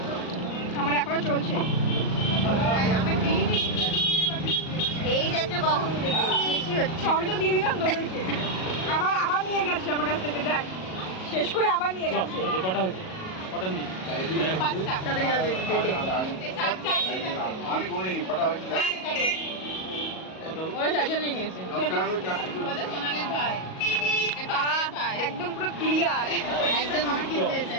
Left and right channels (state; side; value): late; right; 38 ms